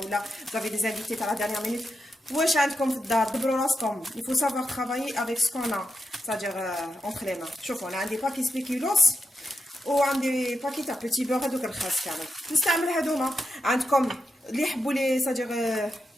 ولا vous avez des invités à la dernière minute واش عندكم في الدار دبروا راسكم. il faut savoir travailler avec ce qu'on a c'est-à-dire entre les mains. شوفوا انا عندي باكي سبيكيلوس وعندي باكي تاع بوتي بور هذوك الخاص كامل نستعمل هذوما. عندكم اللي يحبوا لي c'est-à-dire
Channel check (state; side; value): normal; both; correlation 0.86